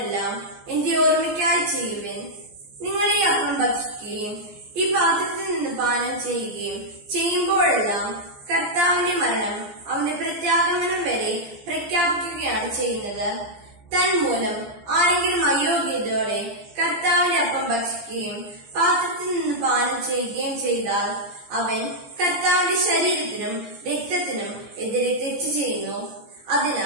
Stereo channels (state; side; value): late; left; 15 ms